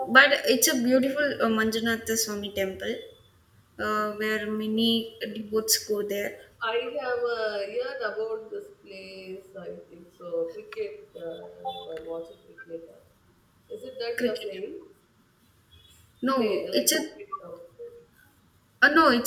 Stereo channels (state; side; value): identical; both; correlation 1.00